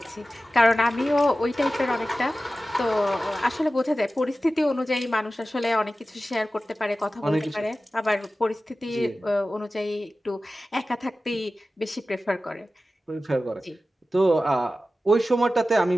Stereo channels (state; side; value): normal; both; correlation 0.95